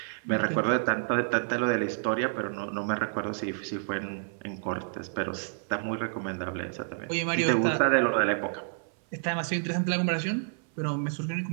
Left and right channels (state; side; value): silent; left; 58 dB below the other